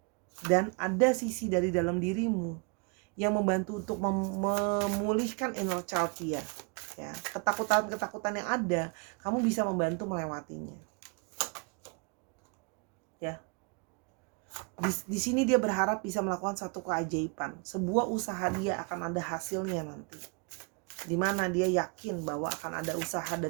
Dan ada sisi dari dalam dirimu yang membantu untuk memulihkan inner child dia, ya. Ketakutan yang ada, kamu bisa membantu melewatinya, ya. Di sini dia berharap bisa melakukan satu keajaiban, sebuah usaha dia akan ada hasilnya nanti, dimana dia yakin bahwa akan ada usaha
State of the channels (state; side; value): quieter; left; 33.6 dB